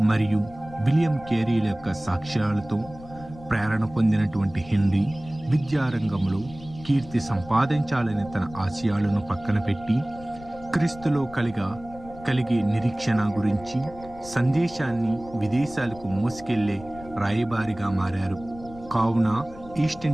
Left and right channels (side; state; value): left; noise; rumble, 18 dB below the sound